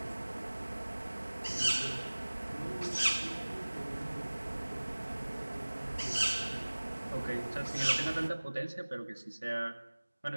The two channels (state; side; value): inverted; both; correlation -1.00